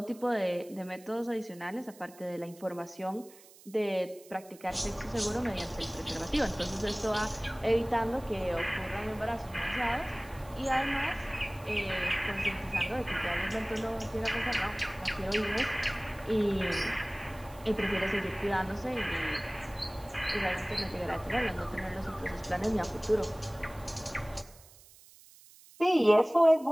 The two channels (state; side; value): noise; right; hiss, 23 dB below the sound